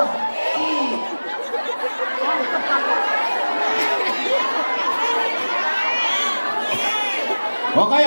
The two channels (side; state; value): both; inverted; correlation -1.00